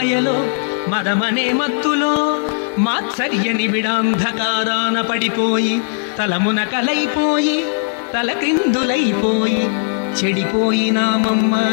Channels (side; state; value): right; silent; digital silence